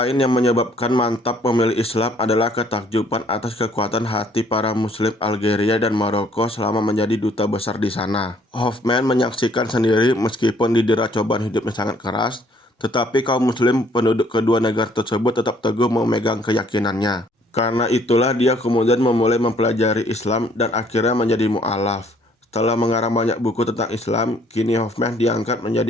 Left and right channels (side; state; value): both; normal; correlation 0.62